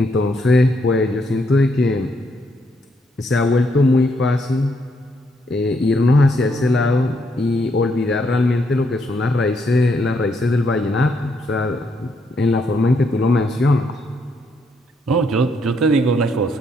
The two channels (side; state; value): both; normal; correlation 0.75